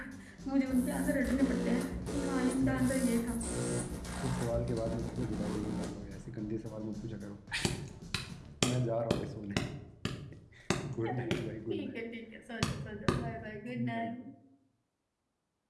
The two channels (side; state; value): both; identical; correlation 1.00